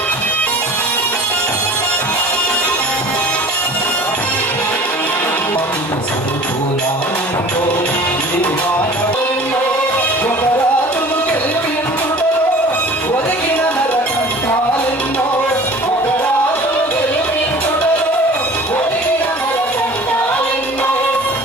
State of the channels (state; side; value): normal; both; correlation 0.43